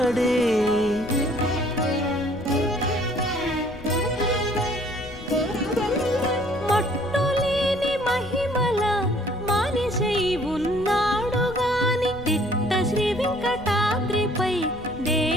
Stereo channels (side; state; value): left; noise; rumble, 15 dB below the sound